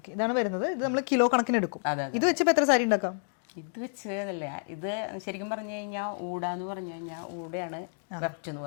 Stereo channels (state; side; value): silent; right; digital silence